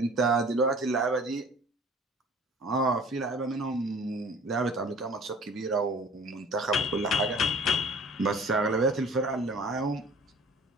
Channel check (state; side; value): normal; both; correlation 0.47